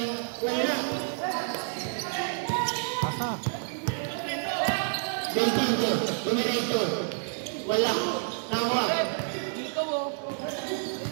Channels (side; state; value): left; silent; 59 dB below the other